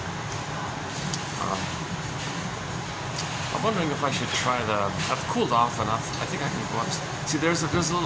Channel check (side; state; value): both; identical; correlation 1.00